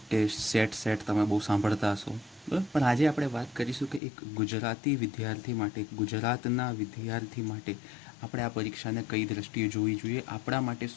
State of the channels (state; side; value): drops out; right; at 4.0 s